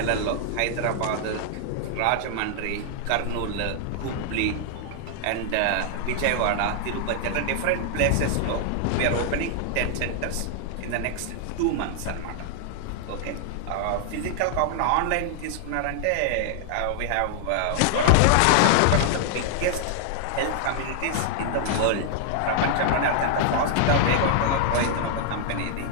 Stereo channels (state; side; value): different; both; correlation 0.00